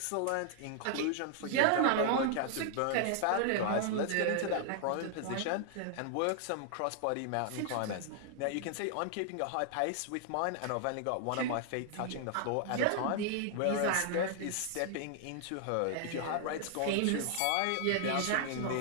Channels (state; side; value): different; both; correlation 0.00